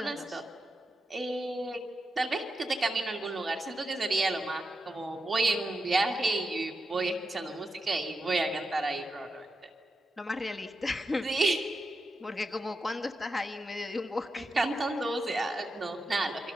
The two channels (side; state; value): both; normal; correlation 0.87